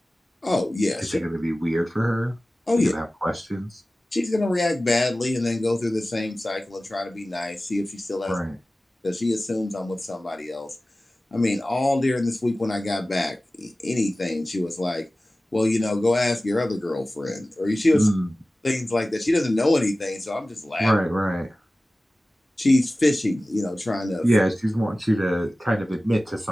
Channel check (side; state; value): both; normal; correlation 0.97